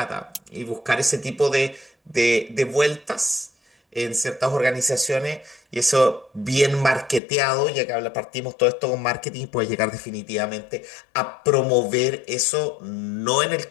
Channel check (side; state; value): right; drops out; at 7.2 s